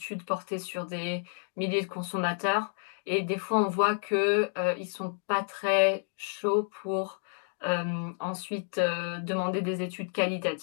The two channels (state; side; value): silent; right; 57 dB below the other